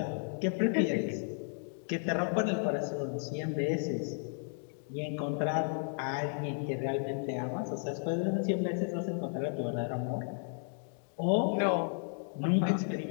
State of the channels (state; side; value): silent; right; 55 dB below the other